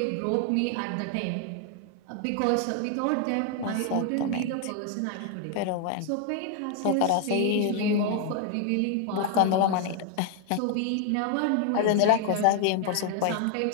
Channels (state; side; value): different; both; correlation 0.00